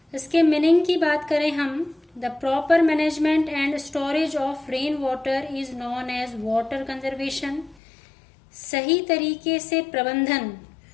इसके मीनिंग की बात करें हम, the proper management and storage of rain water is known as water conservation. सही तरीके से प्रबंधन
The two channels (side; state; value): right; drops out; at 7.8 s